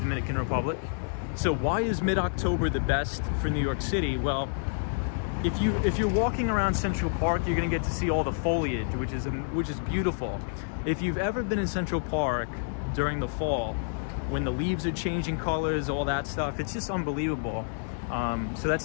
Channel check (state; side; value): silent; right; digital silence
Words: Republic. So why is mid-October the best for New York City? Well, if you're walking around Central Park, you're gonna get to see all the foliage, which is beautiful. If you've ever been in Central Park during the fall, when the leaves are changing colors, all that stuff, it's just unbelievable. So